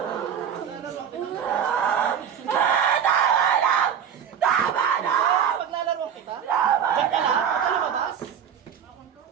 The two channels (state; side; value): quieter; left; 8.2 dB